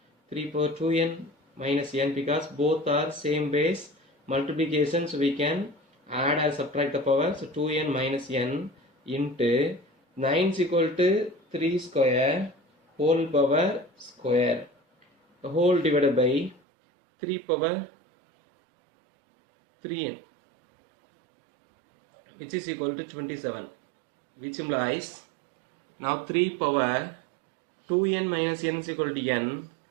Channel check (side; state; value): left; drops out; at 16.6 s